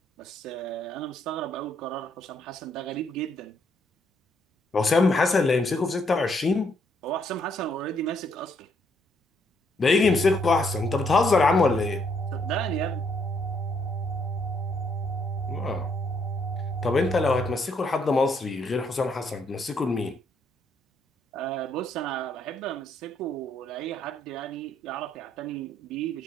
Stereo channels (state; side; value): normal; both; correlation 0.71